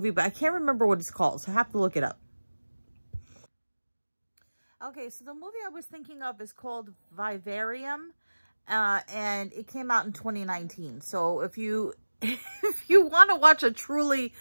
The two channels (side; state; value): both; inverted; correlation -1.00